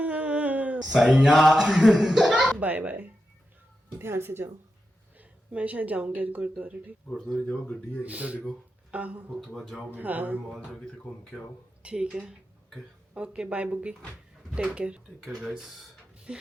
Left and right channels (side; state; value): both; normal; correlation 0.89